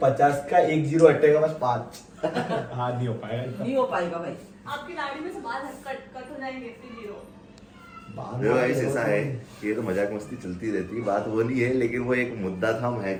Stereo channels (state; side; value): identical; both; correlation 1.00